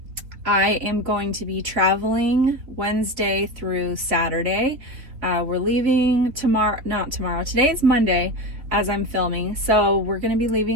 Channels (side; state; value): left; late; 3.8 ms